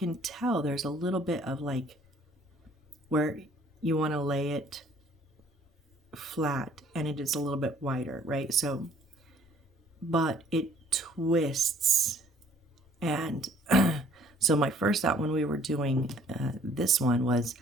tell there's a little bit of like where you want to lay it flat and it is a little bit wider, right? So, but it twists. And so my first thought when we were doing this one was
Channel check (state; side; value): normal; both; correlation 0.58